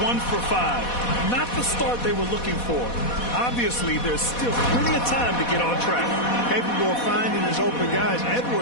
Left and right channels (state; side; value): late; right; 4.1 ms